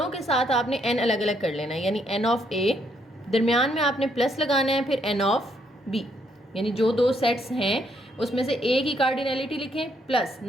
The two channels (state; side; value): normal; both; correlation 0.72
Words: के साथ आपने एन अलग अलग कर लेना है। यानी एन ऑफ ए, दरमियान में आपने प्लस लगाना है, फिर एन ऑफ बी, यानी जो 2 सेट्स हैं उसमें से ए की कार्डिनैलिटी लिखें, plus